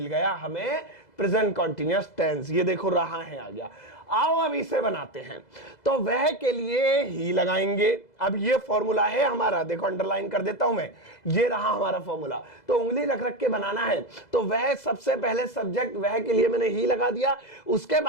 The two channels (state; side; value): late; right; 2.0 ms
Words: गया हमें प्रेजेंट कॉन्टिन्यूअस टेंस। ये देखो रहा है आ गया। आओ अब इसे बनाते हैं। तो वह के लिए ही लगाएंगे। अब ये फॉर्मूला है हमारा, देखो अंडरलाइन कर देता हूं मैं, ये रहा हमारा फॉर्मूला। तो उंगली रख रख के बनाना है। तो वह सबसे पहले सब्जेक्ट, वह के लिए मैंने ही लगा दिया। उसके